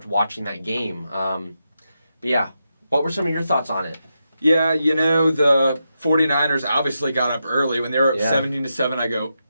watching that game. But yeah, what were some of your thoughts on it? Yeah, the 49ers obviously got up early. When they were up 17-7, I go,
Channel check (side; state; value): both; inverted; correlation -0.86